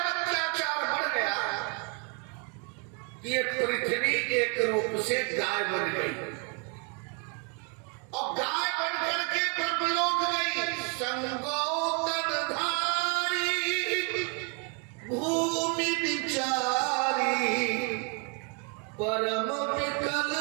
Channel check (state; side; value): quieter; left; 36.1 dB